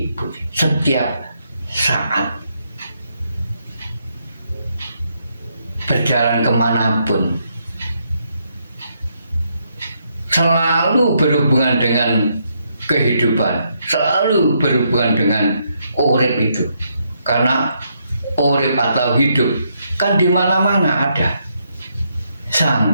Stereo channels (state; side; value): inverted; both; correlation -0.76